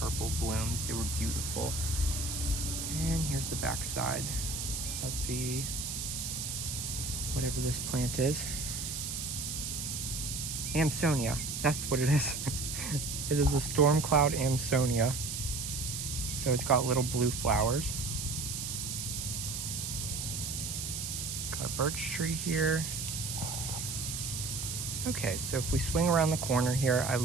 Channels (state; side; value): noise; right; hiss, 4 dB below the sound